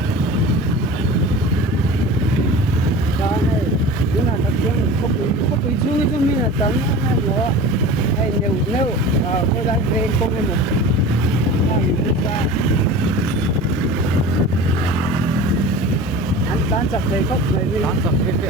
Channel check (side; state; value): both; normal; correlation 0.36